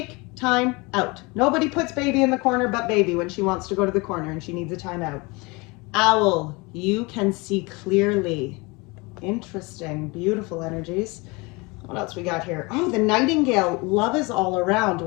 time out. Nobody puts baby in the corner but baby when she wants to go to the corner and she needs a time out. Owl, you can see clearly. Interesting, beautiful energies. What else we got here? Oh, the nightingale, love is all around.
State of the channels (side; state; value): right; quieter; 26.2 dB